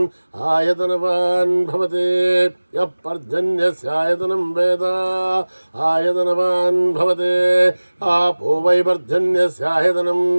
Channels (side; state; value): both; inverted; correlation -1.00